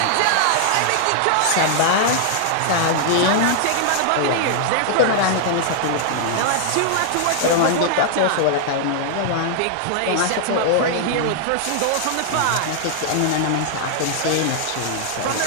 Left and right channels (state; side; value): different; both; correlation 0.00